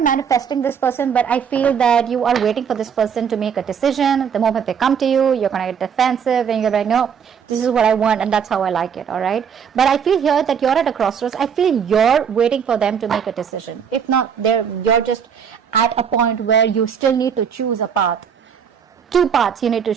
manifesting this person, but I feel that you are waiting for this person to make a decision. The moment they come to you, you're going to get defensive and you're like, no, this is what I want and that's how I like it, all right? But I feel here that you're at a crossroads. I feel you're waiting for them to make a decision. If not, you're just at a point where you still need to choose a path. 2 paths you need to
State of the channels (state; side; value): quieter; left; 7.4 dB